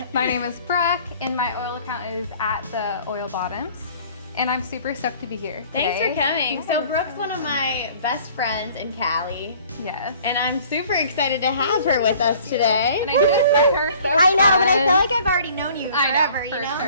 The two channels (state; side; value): inverted; both; correlation -0.52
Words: My name is Brooke, and my oil account is at the Oil Bottoms. And I'm super stoked to be here today. Thanks for coming. So Brooke's one of my best friends in Cali. Yes. And I'm super excited to have her with us today. And I just met her so I know, fun. but I feel like I've already known you forever, I know,